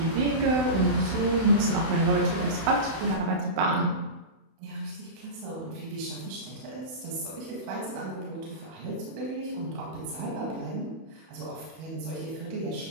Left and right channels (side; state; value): left; late; 31 ms